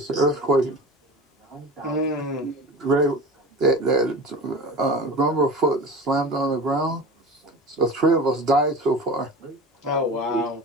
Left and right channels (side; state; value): both; normal; correlation 0.34